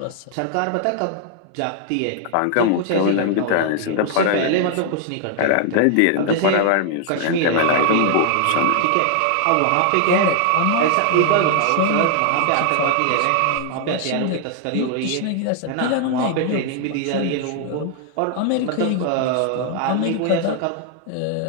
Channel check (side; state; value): both; different; correlation 0.00